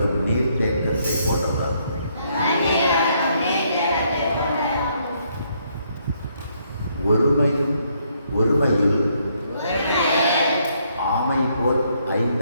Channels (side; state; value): both; inverted; correlation -0.71